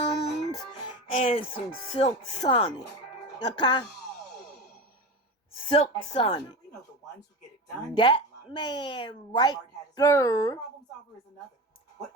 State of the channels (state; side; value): normal; both; correlation 0.26